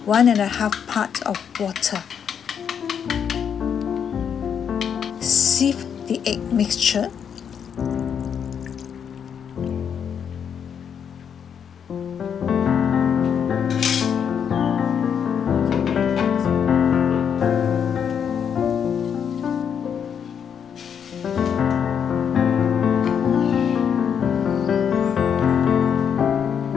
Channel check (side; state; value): right; quieter; 7.7 dB